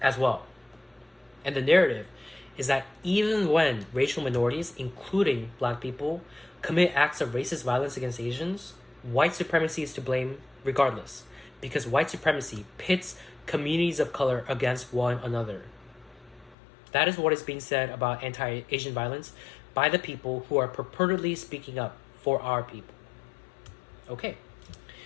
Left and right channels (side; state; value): right; drops out; at 16.6 s